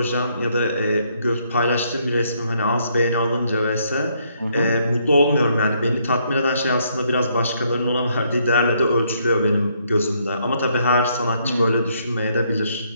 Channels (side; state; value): both; inverted; correlation -0.71